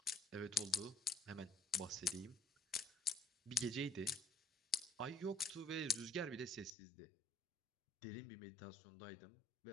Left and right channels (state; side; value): drops out; right; at 6.7 s